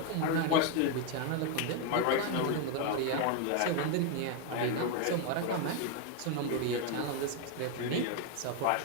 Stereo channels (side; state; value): both; different; correlation 0.01